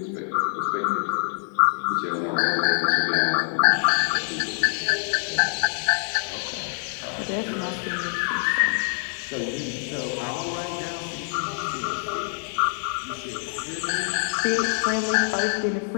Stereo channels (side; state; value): right; silent; digital silence